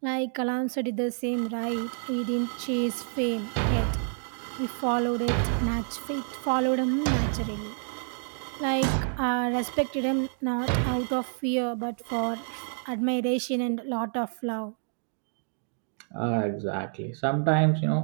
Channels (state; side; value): silent; left; 59 dB below the other